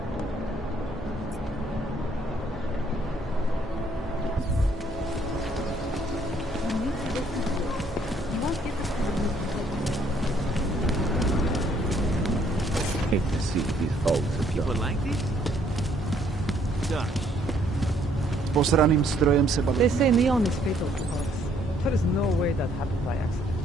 Hate to see these hulks of people like this. Posraným strojem se baví. They say neon is fatal to hearts. There is no way that happened by accident.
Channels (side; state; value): both; normal; correlation 0.66